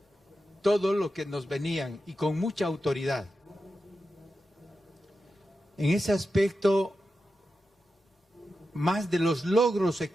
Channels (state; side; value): normal; both; correlation 0.90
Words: todo lo que nos venían y con mucha autoridad. En ese aspecto, más de los logros